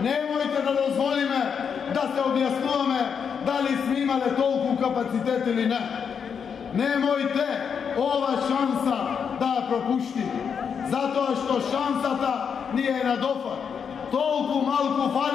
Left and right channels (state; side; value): quieter; right; 6.8 dB